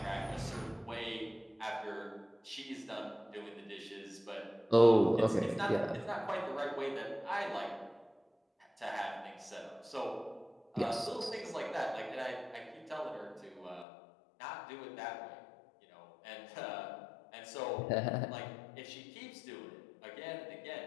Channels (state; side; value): drops out; right; at 13.9 s